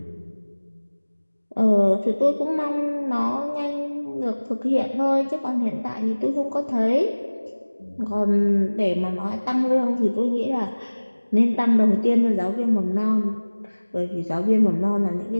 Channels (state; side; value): inverted; both; correlation -1.00